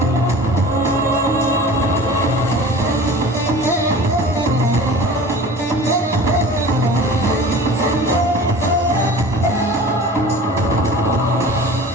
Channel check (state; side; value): normal; both; correlation 0.40